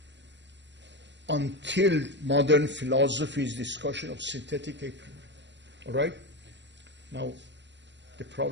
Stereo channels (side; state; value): left; late; 0.52 ms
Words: until modern philosophy is discussion of synthetic a priori. All right? Now, the